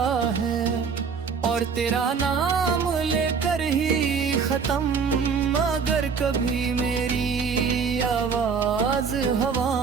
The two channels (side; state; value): left; quieter; 5.8 dB